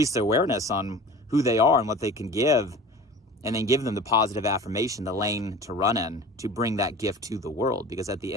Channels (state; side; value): normal; both; correlation 0.39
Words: their awareness on who they are and what they can give, and then give them the positive affirmation, the lane to run in, to bring that gift to the world. Because at the